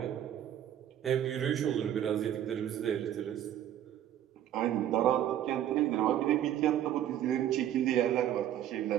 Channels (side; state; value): left; quieter; 11.2 dB